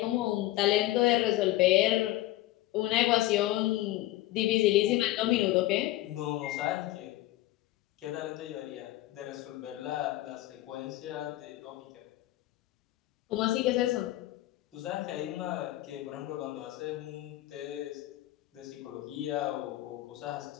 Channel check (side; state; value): right; quieter; 16.4 dB